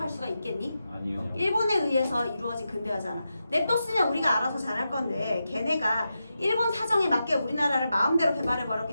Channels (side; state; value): both; inverted; correlation -0.89